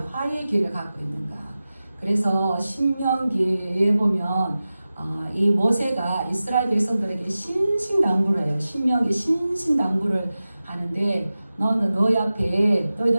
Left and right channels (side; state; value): both; inverted; correlation -0.95